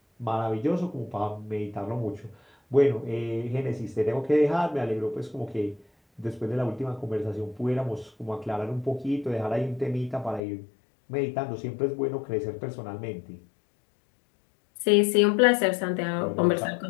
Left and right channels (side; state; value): right; drops out; at 10.4 s